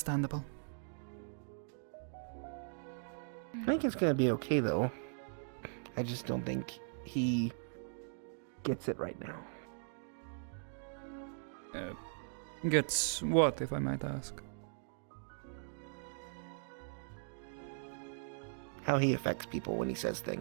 I think it's gonna be okay though. I just don't think he gets it right now. Gets what, if I might ask? How he affects people when he says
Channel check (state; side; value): silent; left; digital silence